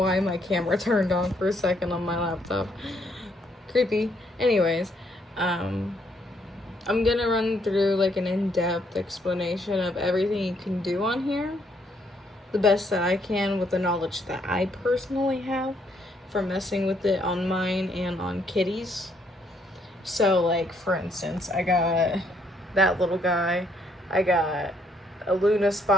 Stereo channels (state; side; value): normal; both; correlation 0.71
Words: my camera turned on for a second on my laptop. Creepy. Anyways, I'm gonna run through like an in-depth explanation of everything you can do on here. The best that I can with the knowledge that I personally have from messing with it on mine and on kitties. So like, for instance, I got that little guy, I got a Luna